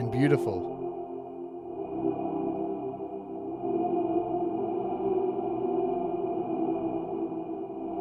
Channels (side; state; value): both; identical; correlation 1.00